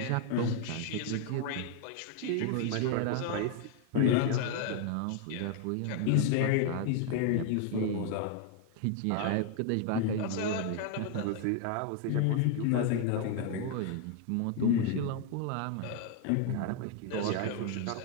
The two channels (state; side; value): different; both; correlation 0.00